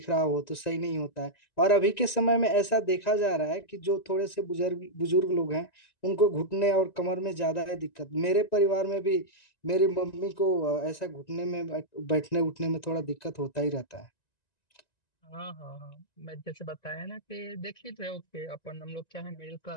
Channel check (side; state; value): right; late; 1.9 ms